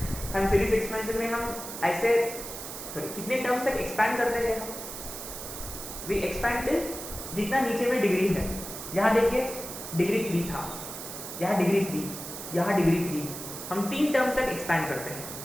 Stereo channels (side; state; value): right; noise; hiss, 9 dB below the sound